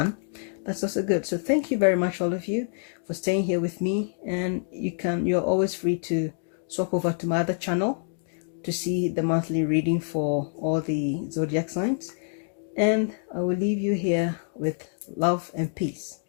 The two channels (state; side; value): silent; right; digital silence